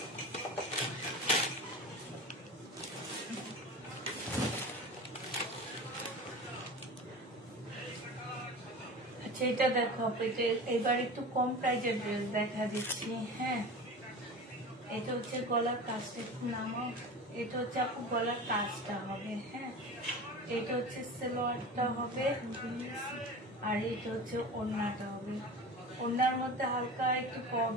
এটা দেখো, এবার একটু কম প্রাইজের ড্রেস দেখা দিচ্ছি। হ্যাঁ এটা হচ্ছে গলার কাজটা একটু নামাও, এটা হচ্ছে আপু গলার কাজটা হবে। হ্যাঁ এটা হচ্ছে সালোয়ারটা হবে আর এটা হচ্ছে ওড়নাটা হবে। ওড়নার মধ্যে হালকা একটু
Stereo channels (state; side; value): normal; both; correlation 0.33